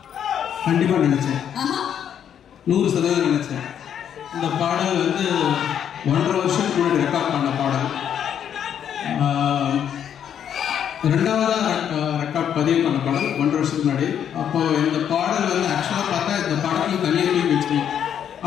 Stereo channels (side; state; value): right; quieter; 9.0 dB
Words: கண்டிப்பா நினைச்சேன், 100% நினைச்சேன். இந்த பாடல் வந்து 1.5 வருஷத்துக்கு முன்னாடி ரெக்கார்ட் பண்ண பாடல். ரெண்டாவதா ரெக்கார்ட் பதிவு பண்ண பாடல் 1.5 வருஷத்துக்கு முன்னாடி. அப்போ இந்த பாடல் வந்து ஆக்சுவலா பார்த்தா இந்த படத்துல தனியாக தூக்கி வச்சுக்கணும்.